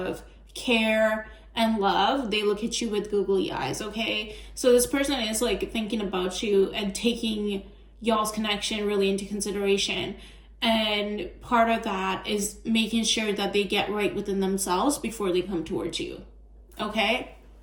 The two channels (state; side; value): identical; both; correlation 1.00